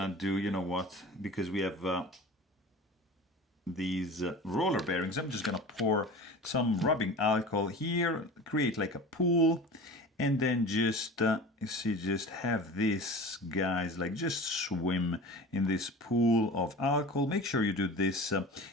do, because we have these roller bearings, I'm just gonna pour some rubbing alcohol here, create like a pool, and then just you see, just have this, guys, like just swim in this pool of alcohol. Make sure you do this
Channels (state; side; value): normal; both; correlation 0.36